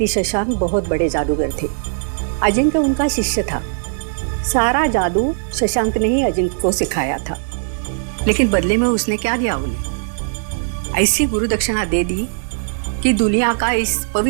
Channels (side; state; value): left; silent; digital silence